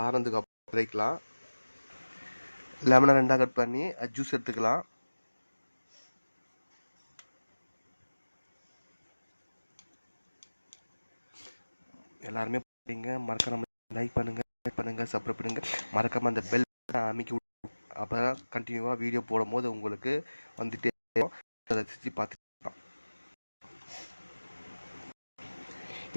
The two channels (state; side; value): inverted; both; correlation -1.00